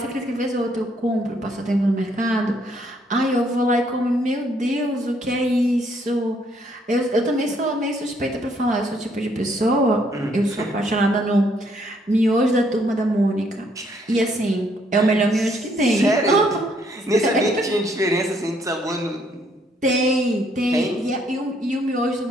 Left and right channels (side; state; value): both; normal; correlation 0.68